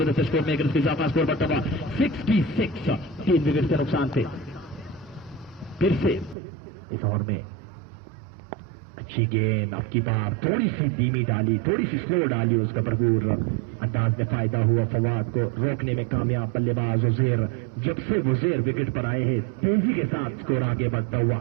से स्कोर में 1 रन का इजाफा। स्कोर बढ़ता हुआ 66, 3 विकेट के नुकसान थे। फिर से इस ओवर में अच्छी गेंद, अब की बार थोड़ी सी धीमी डाली, थोड़ी सी स्लो डाली, उसका भरपूर अंदाज में फायदा हुआ। फवाद को रोकने में कामयाब बल्लेबाज उज़ैर। जब से उज़ैर विकेट पर आए हैं तेजी के साथ स्कोर आगे बढ़ता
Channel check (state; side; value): drops out; left; at 6.4 s